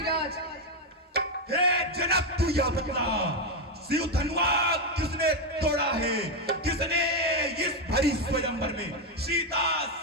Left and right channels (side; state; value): both; normal; correlation 0.05